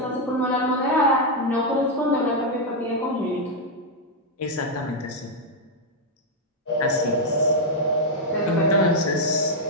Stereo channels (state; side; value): normal; both; correlation 0.00